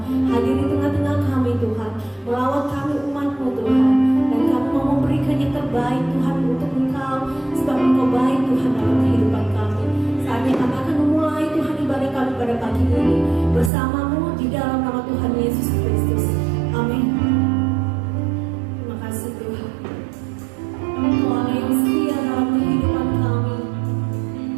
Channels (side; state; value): left; drops out; at 13.7 s